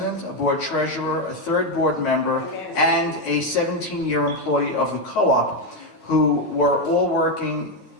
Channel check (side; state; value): right; late; 9.3 ms